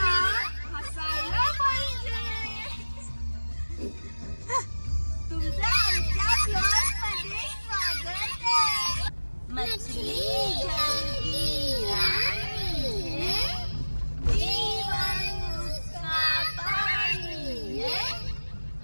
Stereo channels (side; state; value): both; inverted; correlation -1.00